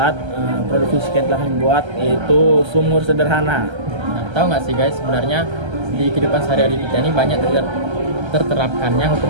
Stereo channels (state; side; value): late; left; 1.3 ms